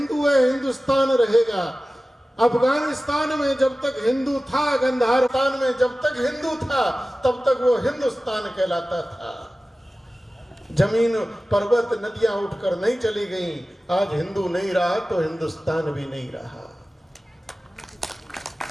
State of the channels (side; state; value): both; normal; correlation 0.96